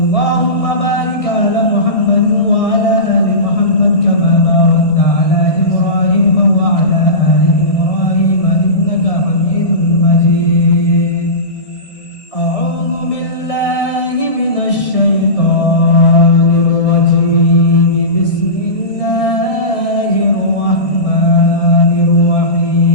بارك على محمد وعلى آل محمد كما باركت على إبراهيم وعلى آل إبراهيم إنك حميد مجيد. أعوذ بالله من الشيطان الرجيم. بسم الله الرحمن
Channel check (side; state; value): right; late; 1.6 ms